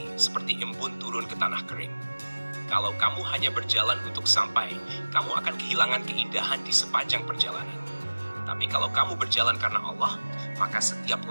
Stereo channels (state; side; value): inverted; both; correlation -1.00